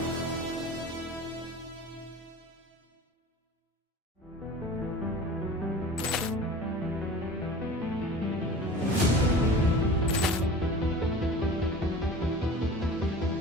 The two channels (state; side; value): normal; both; correlation 0.39